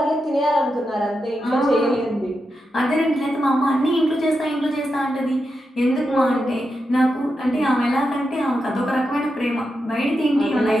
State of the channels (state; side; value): normal; both; correlation 0.87